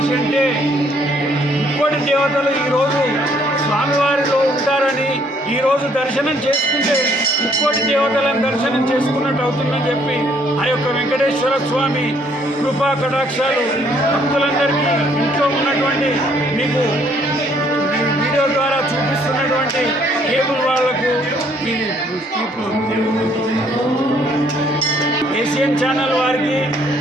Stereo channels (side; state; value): both; normal; correlation 0.65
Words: అంటే ముక్కోటి దేవతలు ఈరోజు స్వామివారిలో ఉంటారని ఈరోజు దర్శనం చేసుకుంటే ముక్కోటి దేవతలను దర్శనం చేసుకున్నట్టు అవుతుందని చెప్పి ఆ యొక్క వెంకటేశ్వర స్వామి కృపా కటాక్షాలు భక్తులందరికీ ఇంట్లో ఉన్నటువంటి మీకు వీడియో ద్వారా చూపిస్తున్నటువంటి కేబుల్ వాళ్లకు ఈ ఏషియన్ ఛానల్ వారికి